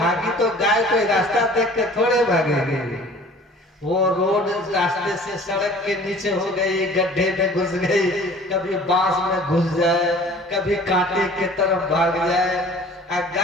तो गाय कोई रास्ता देख के थोड़े भागेगी। वो रोड रास्ते से सड़क के नीचे हो गई, गड्ढे में घुस गई, कभी बांस में घुस जाए, कभी कांटे के तरफ भाग जाए।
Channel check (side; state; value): both; normal; correlation 0.48